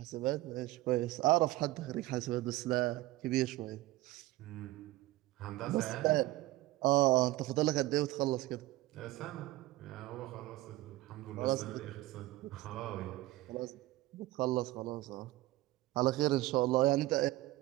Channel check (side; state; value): left; quieter; 17.7 dB